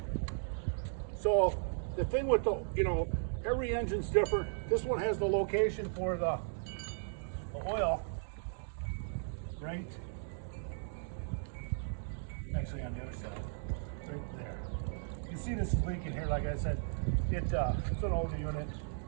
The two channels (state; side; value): silent; left; digital silence